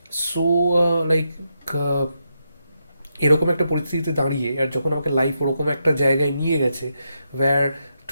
সো লাইক এরকম একটা পরিস্থিতিতে দাঁড়িয়ে, আর যখন আমাকে লাইফ ওরকম একটা জায়গায় নিয়ে গেছে, where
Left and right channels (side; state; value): both; inverted; correlation -0.83